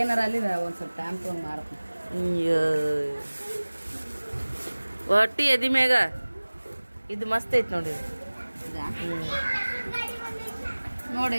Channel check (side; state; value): both; inverted; correlation -1.00